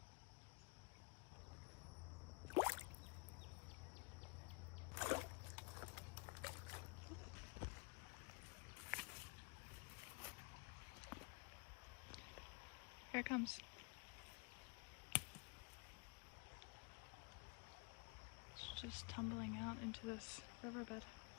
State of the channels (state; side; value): quieter; right; 31.7 dB